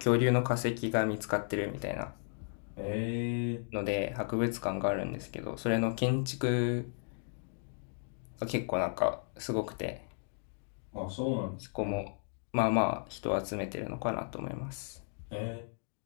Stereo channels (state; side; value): silent; right; digital silence